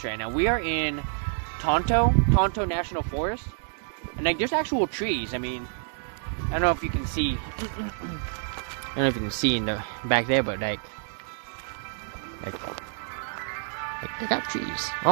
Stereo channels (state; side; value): silent; left; 60 dB below the other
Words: right now. We are in Tonto National Forest. And, like, there's actual trees. I mean, I don't know if you can see... I don't know if you can see in the back there, but like they got trees.